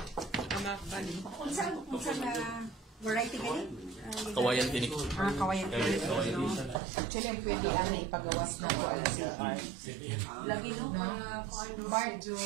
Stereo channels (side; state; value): left; drops out; at 6.8 s